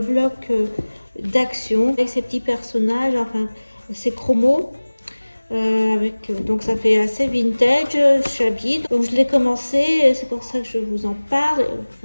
d'action, avec ces petits personnages, enfin ces chromos. Donc ça fait assez vintage, shabby. Donc je l'ai commencé, c'est pour ça que je vous en parle.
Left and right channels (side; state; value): both; inverted; correlation -1.00